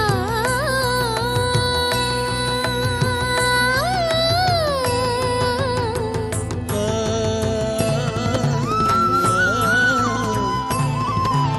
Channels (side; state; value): both; identical; correlation 1.00